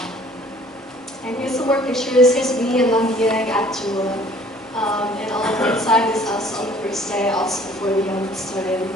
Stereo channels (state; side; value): normal; both; correlation 0.54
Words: And here's some more pictures. Here's me and Lambiang at Jula. And on the right side is us on the first day, also before we started